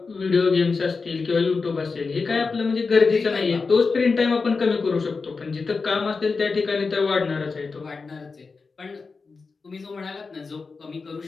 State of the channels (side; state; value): right; quieter; 4.5 dB